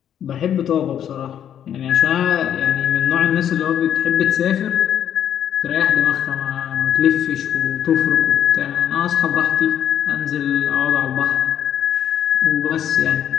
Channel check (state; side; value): quieter; right; 9.7 dB